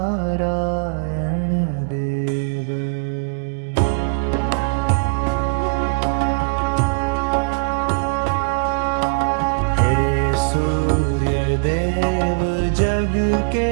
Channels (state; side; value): silent; left; digital silence